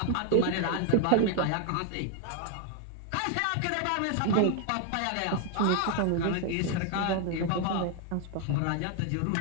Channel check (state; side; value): different; both; correlation 0.00